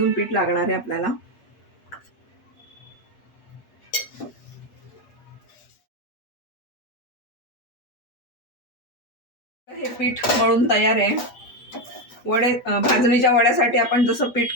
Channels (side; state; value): right; late; 8.4 ms